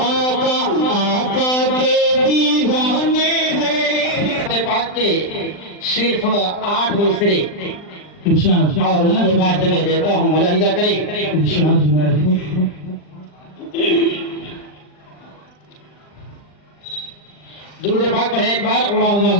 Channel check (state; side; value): late; right; 39 ms